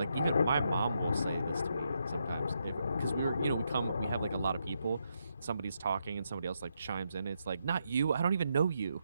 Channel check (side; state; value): both; inverted; correlation -0.80